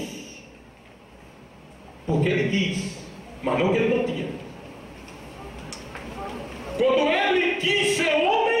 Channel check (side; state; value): both; identical; correlation 1.00